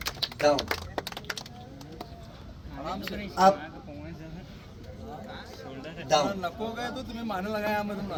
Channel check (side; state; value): both; identical; correlation 1.00